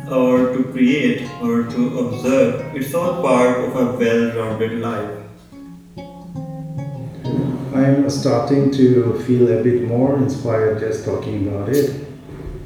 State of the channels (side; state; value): both; identical; correlation 1.00